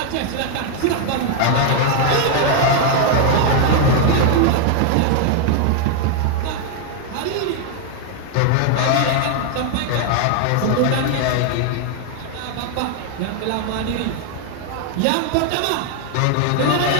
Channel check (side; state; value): both; different; correlation 0.00